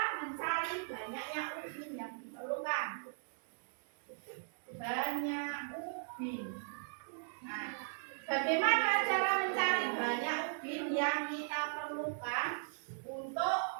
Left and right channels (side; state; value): left; silent; digital silence